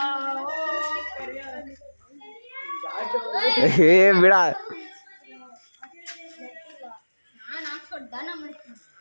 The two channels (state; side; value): inverted; both; correlation -1.00